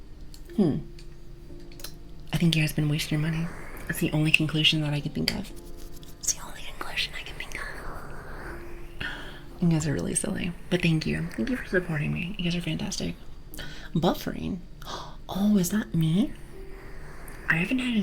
I think you guys been wasting your money. That's the only conclusion that I can think of. It's the only conclusion I can think of. You guys are really silly. But thank you. Thank you for supporting me. You guys are fantastic. Buffering? Oh, is that me? I haven't had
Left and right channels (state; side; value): identical; both; correlation 1.00